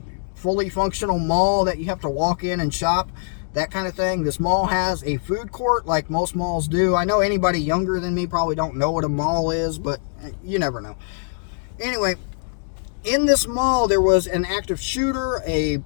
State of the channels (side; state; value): right; silent; digital silence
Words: fully functional mall that you have to walk in and shop, that kind of thing. This mall has a food court like most malls do. I know anybody younger than me probably don't know what a mall is, but you never know. Anyway, in this mall there was an active shooter. A